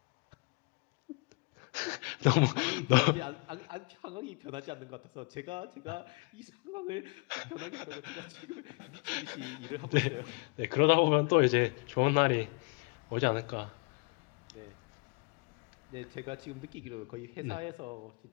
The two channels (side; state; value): right; quieter; 30.9 dB